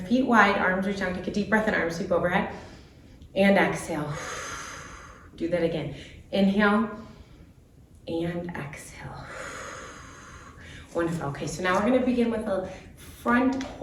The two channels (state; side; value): identical; both; correlation 1.00